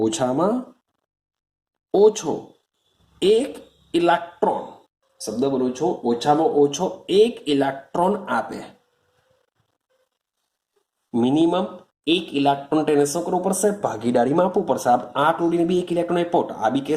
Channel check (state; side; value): identical; both; correlation 1.00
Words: ઓછો એક ઇલેક્ટ્રોન, શબ્દ બોલું છું, ઓછામાં ઓછો એક ઇલેક્ટ્રોન આપે. મિનિમમ એક ઇલેક્ટ્રોન તેને શું કરવું પડશે? ભાગીદારીમાં આપવું પડશે. આ ક્લોરીન બી એક ઇલેક્ટ્રોન આપ્યો, આ બી